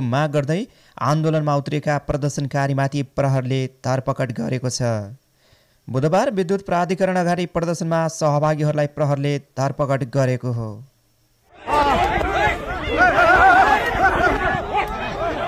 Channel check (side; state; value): both; identical; correlation 1.00